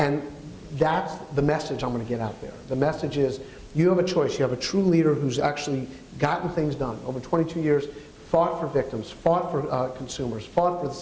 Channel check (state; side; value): identical; both; correlation 1.00